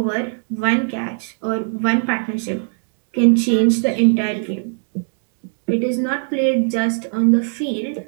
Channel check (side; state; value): left; silent; digital silence